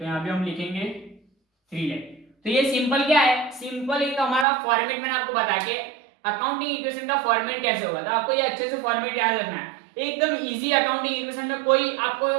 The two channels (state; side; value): drops out; left; at 4.5 s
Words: यहाँ पे हम लिखेंगे 3 लाख। तो ये सिंपल क्या है, सिंपल एक हमारा फॉर्मेट मैंने आपको बता के अकाउंटिंग इक्वेशन का फॉर्मेट कैसे होगा, तो आपको ये अच्छे से फॉर्मेट याद रखना है, एकदम इजी, अकाउंटिंग इक्वेशन में कोई आपको